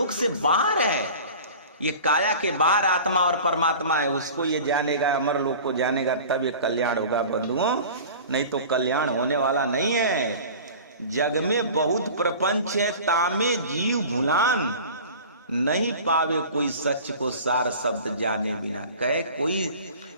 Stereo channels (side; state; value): both; inverted; correlation -0.40